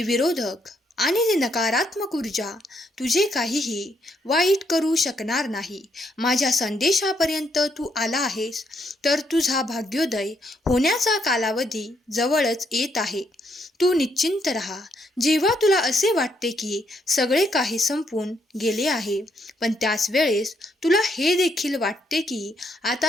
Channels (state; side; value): normal; both; correlation 0.74